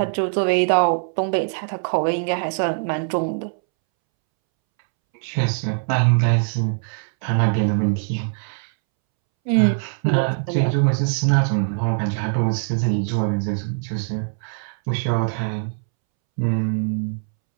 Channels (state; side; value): silent; left; 64 dB below the other